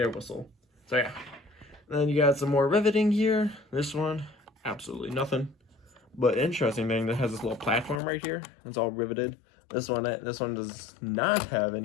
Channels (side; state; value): right; drops out; at 8.0 s